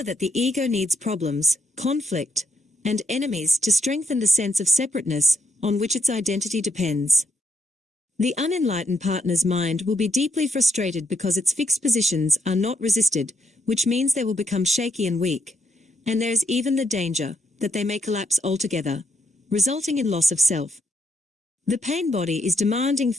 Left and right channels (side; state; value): both; normal; correlation 0.78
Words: that the ego needs problems, conflict, and enemies to strengthen the sense of separateness on which its identity depends. The unenlightened partner's mind will be deeply frustrated because its fixed positions are not resisted, which means they will become shaky and weak, and there is even the danger that they may collapse altogether, resulting in loss of self. The pain body is demanding